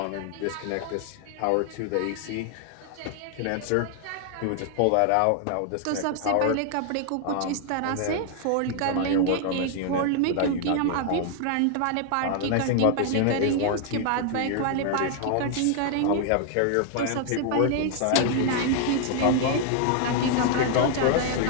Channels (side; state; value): both; different; correlation 0.00